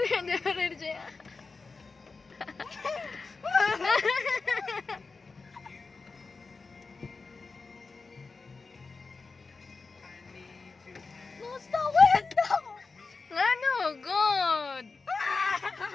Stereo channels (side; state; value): right; quieter; 4.2 dB